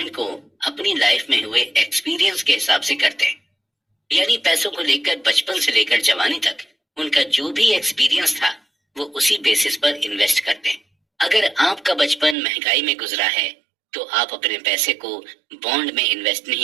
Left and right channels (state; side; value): drops out; left; at 12.4 s